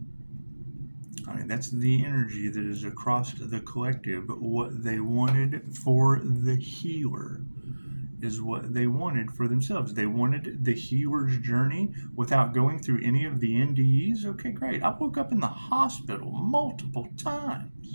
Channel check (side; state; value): both; inverted; correlation -1.00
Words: I mean, that's the energy that is across the collective. But what they wanted for the healer is what they wanted for themselves. They wanted the healer's journey without going through any of the NDEs. Okay, great. I woke up in the hospital multiple